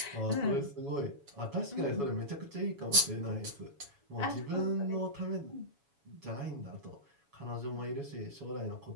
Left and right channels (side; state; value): left; late; 7.1 ms